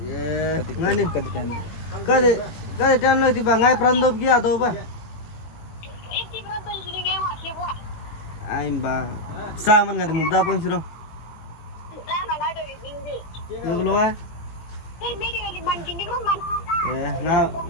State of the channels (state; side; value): late; right; 18 ms